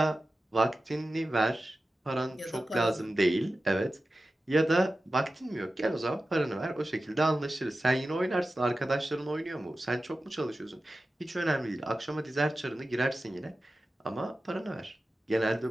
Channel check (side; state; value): both; normal; correlation 0.94